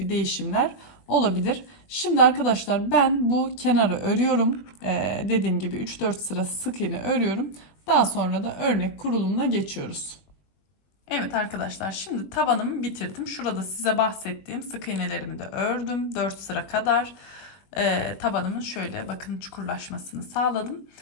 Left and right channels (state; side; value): late; right; 20 ms